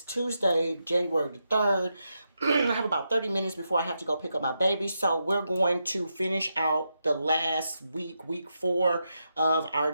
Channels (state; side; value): inverted; both; correlation -0.85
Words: Tuesday, January the 3rd. I have about 30 minutes before I have to go pick up my baby. So we're going to finish out the last week, week 4 of our